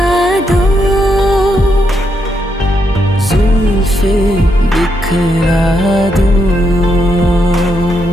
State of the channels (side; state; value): both; normal; correlation 0.79